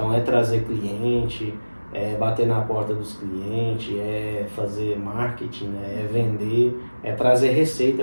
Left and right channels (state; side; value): inverted; both; correlation -1.00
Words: é trazer cliente, bater na porta dos clientes, fazer marketing, né? É vender, é trazer